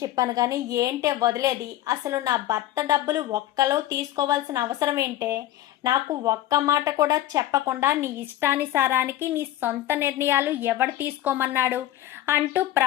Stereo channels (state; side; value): quieter; right; 13.8 dB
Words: చెప్పాను, కానీ ఏంటే వదిలేది, అసలు నా భర్త డబ్బులు ఒక్కలో తీసుకోవాల్సిన అవసరం ఏంటే, నాకు ఒక్క మాట కూడా చెప్పకుండా నీ ఇష్టానుసారానికి నీ సొంత నిర్ణయాలు ఎవడు తీసుకోమన్నాడు అంటూ